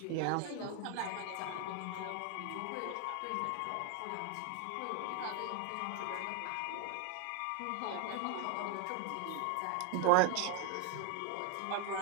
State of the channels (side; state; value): both; different; correlation 0.01